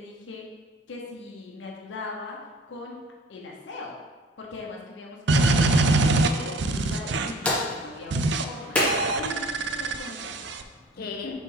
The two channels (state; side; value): normal; both; correlation 0.48